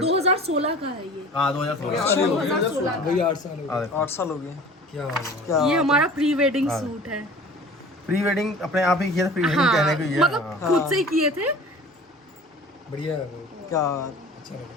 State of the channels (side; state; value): both; normal; correlation 0.43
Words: 2016 का है ये। हाँ 2016। 2016 वही 8 साल हो गए। 8 साल हो गए। क्या बात है। क्या ये हमारा प्री वेडिंग सूट है। प्री वेडिंग अपने आप ही किया था, प्री वेडिंग हाँ, कहने को ये मतलब खुद से ही किए थे। बढ़िया है वो, क्या अच्छा लगा।